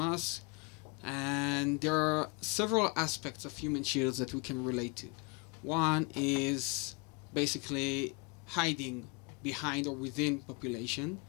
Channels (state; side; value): quieter; right; 31.2 dB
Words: And there are several aspects of human shields that we can relate to. One is basically hiding behind or within population.